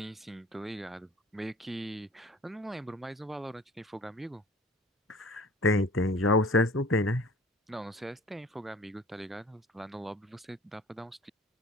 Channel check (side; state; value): both; normal; correlation 0.47